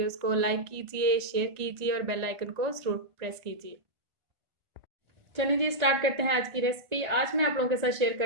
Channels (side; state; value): left; late; 1.4 ms